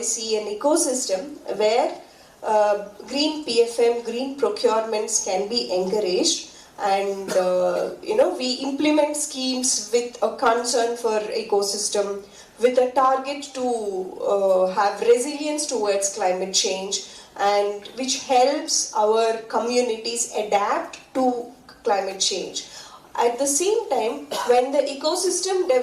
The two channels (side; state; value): both; identical; correlation 1.00